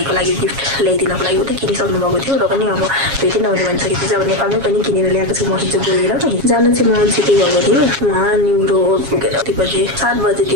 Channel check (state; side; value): late; left; 7.3 ms